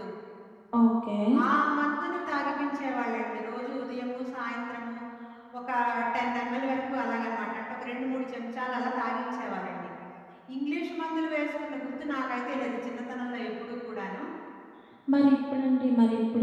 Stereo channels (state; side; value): identical; both; correlation 1.00